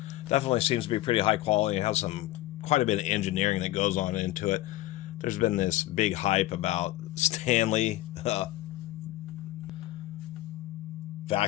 definitely seems to be pretty high quality. It has quite a bit of engineering that goes on into it. There's been this big hype about Stanley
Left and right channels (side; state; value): right; quieter; 16.0 dB